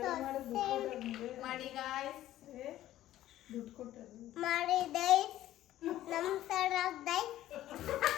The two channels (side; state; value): right; quieter; 13.7 dB